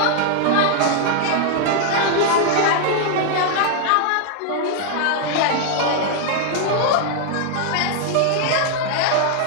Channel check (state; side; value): different; both; correlation 0.00